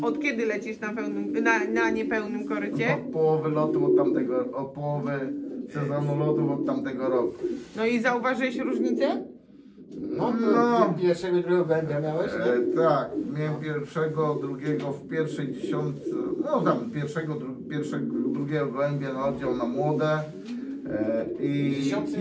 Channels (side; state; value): both; identical; correlation 1.00